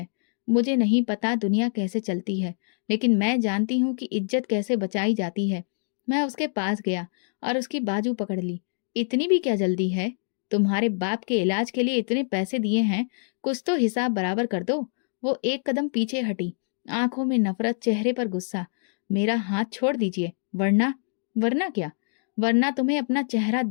मुझे नहीं पता दुनिया कैसे चलती है, लेकिन मैं जानती हूँ कि इज्जत कैसे बचाई जाती है। मैं उसके पास गया और उसकी बाजू पकड़ ली। इतनी भी क्या जल्दी है? तुम्हारे बाप के इलाज के लिए इतने पैसे दिए हैं, कुछ तो हिसाब बराबर कर दो। वो एक कदम पीछे हटी, आंखों में नफरत, चेहरे पर गुस्सा। मेरा हाथ छोड़ दीजिए, वरना। वरना क्या? वरना तुम्हें अपना चेहरा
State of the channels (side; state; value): right; silent; digital silence